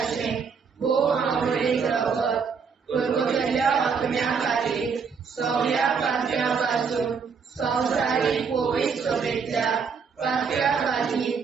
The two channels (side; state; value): left; quieter; 5.8 dB